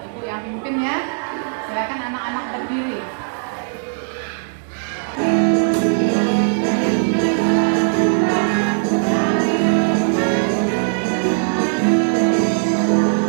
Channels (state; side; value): silent; left; digital silence